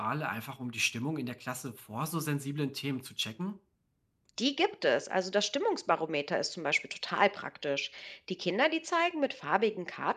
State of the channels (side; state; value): both; identical; correlation 1.00